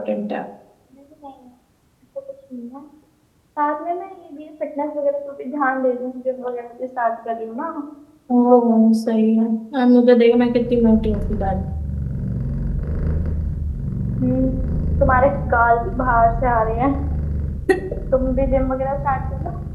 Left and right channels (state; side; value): identical; both; correlation 1.00